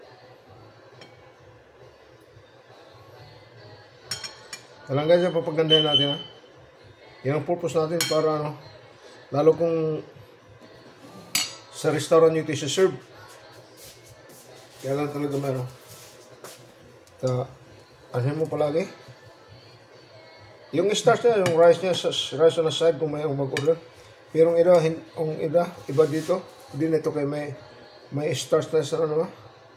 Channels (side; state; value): both; identical; correlation 1.00